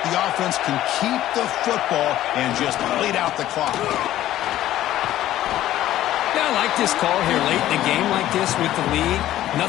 the offense can keep the football and just bleed out the clock. Yeah, I like this call here late in a game like this with the lead.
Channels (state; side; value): quieter; right; 13.6 dB